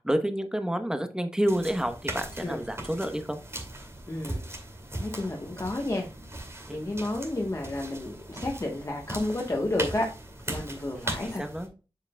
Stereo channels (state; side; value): normal; both; correlation 0.86